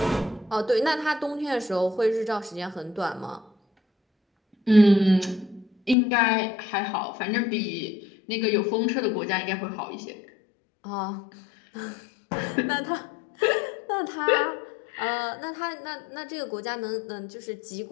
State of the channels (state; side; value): drops out; right; at 6.0 s